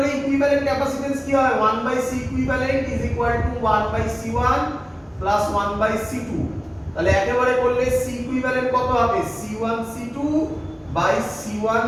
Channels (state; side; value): identical; both; correlation 1.00